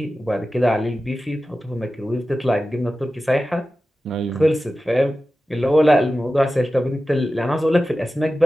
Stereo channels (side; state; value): both; normal; correlation 0.94